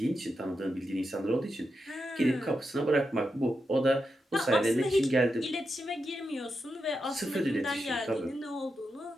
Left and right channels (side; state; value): both; normal; correlation 0.87